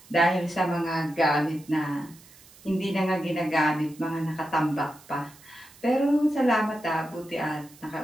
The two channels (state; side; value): noise; right; hiss, 24 dB below the sound